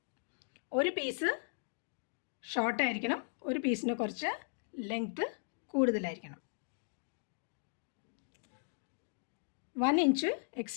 ഒരു പീസ് ഷോർട്ടായിരിക്കണം, ഒരു പീസിന് കുറച്ച് ലെങ്ത്ത് കൂടുതലായിരിക്കണം. 1 ഇഞ്ച്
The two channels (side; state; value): right; silent; digital silence